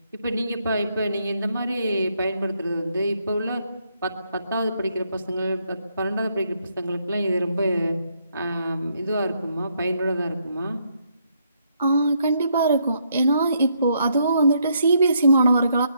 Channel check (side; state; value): both; inverted; correlation -0.74